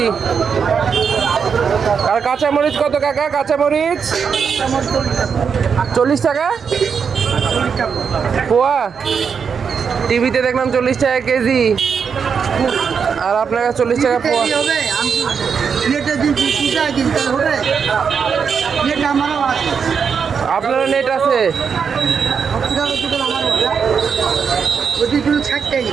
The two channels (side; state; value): left; quieter; 6.4 dB